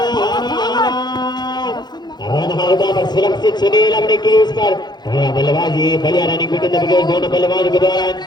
सुरक्षित सुनील अपने क्रीज पर बल्लेबाजी बढ़िया रनिंग विकेट दोनों बल्लेबाजों के द्वारा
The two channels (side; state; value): right; late; 0.21 ms